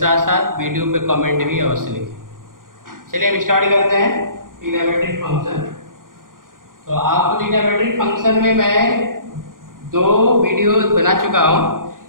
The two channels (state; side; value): late; left; 0.90 ms